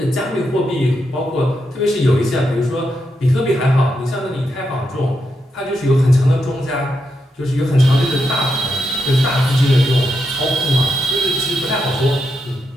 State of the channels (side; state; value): both; normal; correlation 0.83